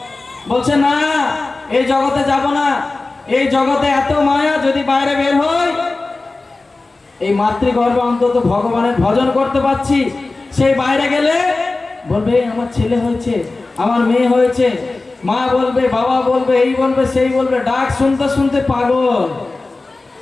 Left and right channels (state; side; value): quieter; right; 3.4 dB